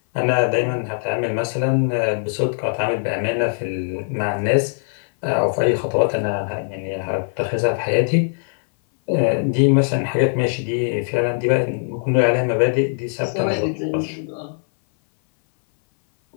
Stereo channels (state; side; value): silent; right; 60 dB below the other